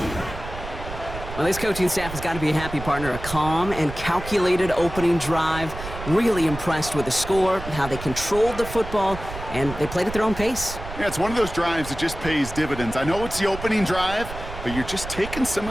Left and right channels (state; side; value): noise; right; rumble, 10 dB below the sound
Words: Well, this coaching staff has got to be a happy partner. A calm and calculated opening drive. Really impressed with the score, how they controlled the football, and they played at their own pace. Yeah, it's one of those drives that just pays dividends. I know it's the opening drive, but you're just taking some